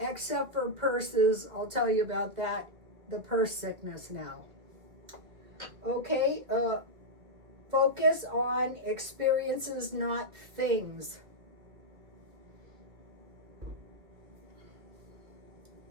for purses. I'll tell you about that. The purse sickness now. Okay, focus on experiences, not things.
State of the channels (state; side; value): late; left; 2.4 ms